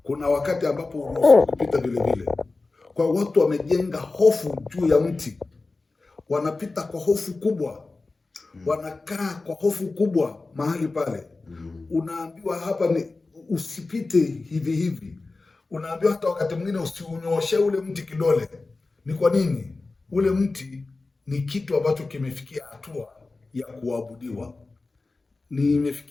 kuna wakati ambapo uruhusiwi kupita vile vile. Kwa watu wamejenga hofu juu ya mti, wanapita kwa hofu kubwa, wanakaa kwa hofu kubwa mahali pale. Unaambiwa hapa ni usipite hivi hivi, unaambiwa hata wakati mwingine usiunyoshe ule mti kidole. Ni kwa nini? Ule mti ni kitu ambacho kimefikia hatua ya kuabudiwa, ni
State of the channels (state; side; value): quieter; right; 3.5 dB